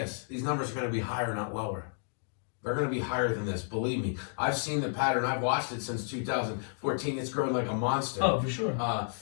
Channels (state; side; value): silent; right; digital silence